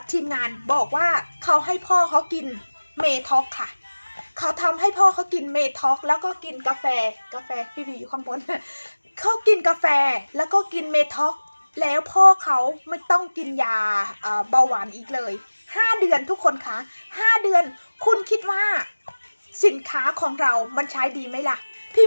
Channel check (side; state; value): both; inverted; correlation -1.00